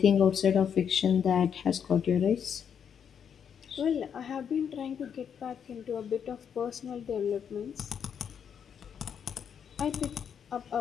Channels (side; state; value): right; quieter; 7.8 dB